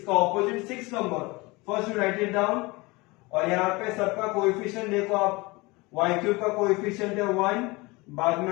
का opposite 6 number, first you right it down. और यहाँ पे सबका कोएफिशिएंट देखो आप, y क्यूब का कोएफिशिएंट है 1, बाद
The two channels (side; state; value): right; quieter; 24.0 dB